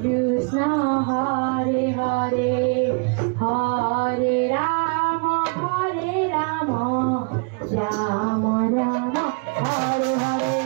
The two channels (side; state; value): left; quieter; 36.0 dB